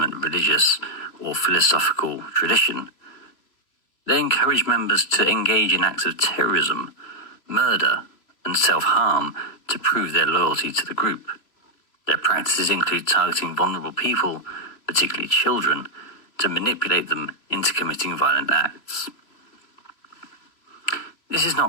religious or philosophical tradition. They encourage members to engage in acts of terrorism, murder, and self-harm to prove their loyalty to the group. Their practices include targeting vulnerable people, particularly children, to manipulate them into committing violent acts. This is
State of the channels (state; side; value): late; right; 3.0 ms